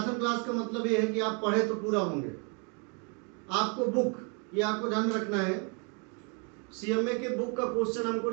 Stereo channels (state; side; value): quieter; left; 35.7 dB